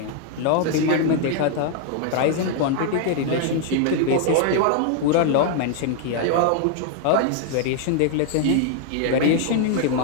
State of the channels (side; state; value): both; different; correlation 0.00